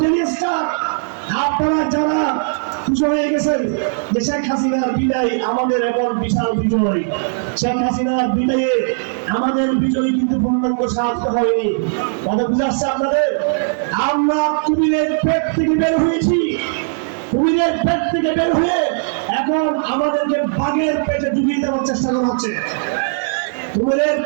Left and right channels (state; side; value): silent; left; digital silence